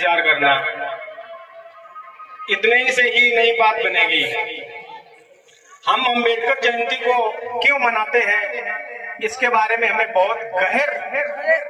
करना, इतने से ही नई बात बनेगी। हम अम्बेडकर जयंती को क्यों मनाते हैं, इसके बारे में हमें बहुत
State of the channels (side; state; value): both; identical; correlation 1.00